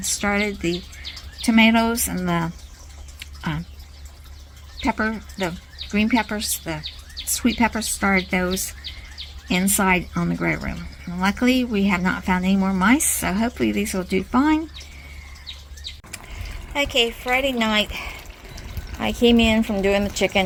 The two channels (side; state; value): both; identical; correlation 1.00